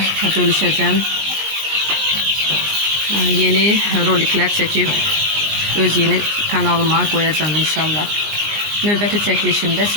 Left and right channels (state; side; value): late; left; 19 ms